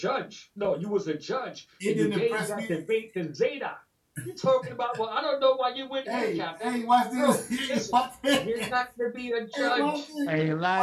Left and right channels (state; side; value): identical; both; correlation 1.00